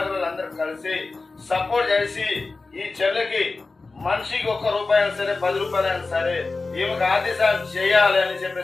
అందరూ కలిసి సపోర్ట్ చేసి ఈ చెల్లెకి మనిషికి ₹1 అయినా సరే, ₹10 అయినా సరే ఈమెకు ఆర్థిక సాయం చేయాలి అని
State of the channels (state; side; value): quieter; right; 3.7 dB